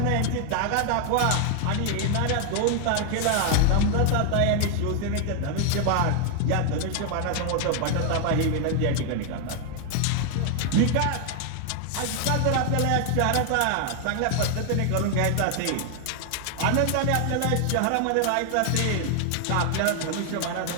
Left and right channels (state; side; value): different; both; correlation 0.00